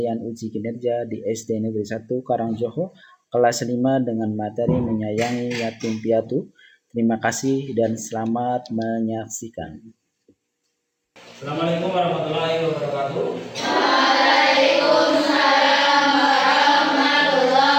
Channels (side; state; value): both; identical; correlation 1.00